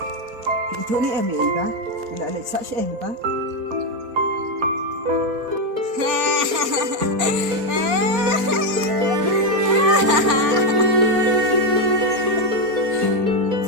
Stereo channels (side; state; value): left; late; 4.2 ms